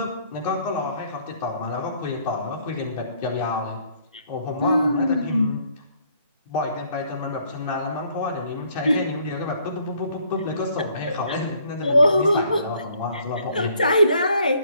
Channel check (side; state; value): both; inverted; correlation -0.63